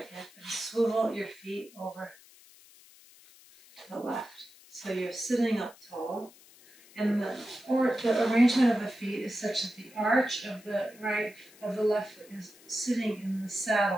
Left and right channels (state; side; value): noise; left; hiss, 24 dB below the sound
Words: hip, and swivel your feet over to the left. So you're sitting up tall, and the arrangement of the feet is such that the arch of the left foot is sitting in the